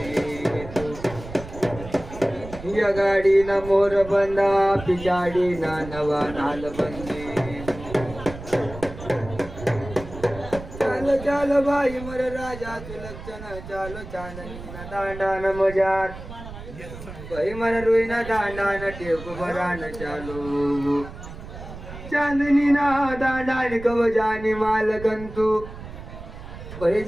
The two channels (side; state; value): right; noise; rumble, 13 dB below the sound